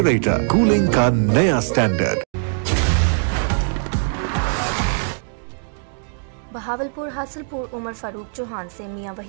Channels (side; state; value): left; silent; digital silence